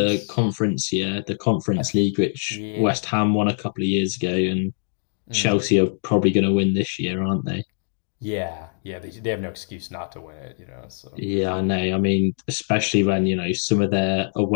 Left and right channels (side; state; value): right; silent; digital silence